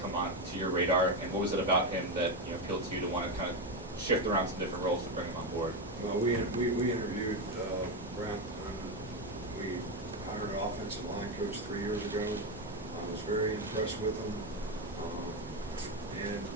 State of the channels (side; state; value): both; normal; correlation 0.10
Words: come on to your radar, and what was it about him that, you know, appealed to you to want to kind of shift around some different roles to bring him on board? Well, we interviewed Brent. We hired an offensive line coach 3 years ago. I was very impressed with him, and